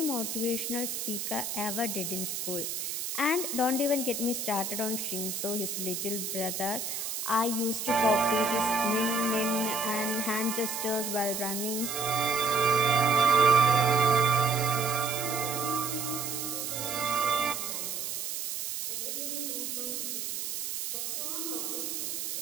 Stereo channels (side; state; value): right; noise; hiss, 4 dB below the sound